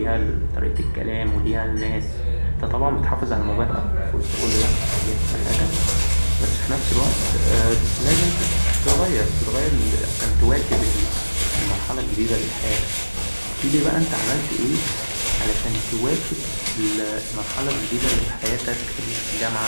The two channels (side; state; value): both; inverted; correlation -1.00